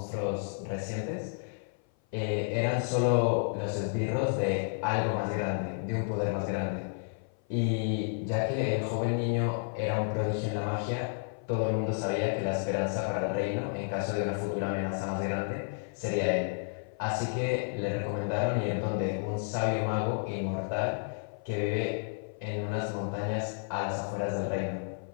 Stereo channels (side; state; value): right; silent; 55 dB below the other